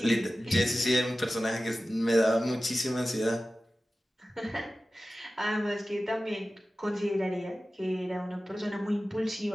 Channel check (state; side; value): normal; both; correlation 0.95